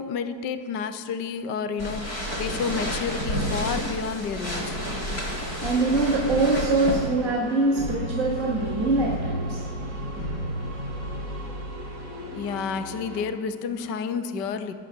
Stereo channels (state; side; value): late; right; 4.6 ms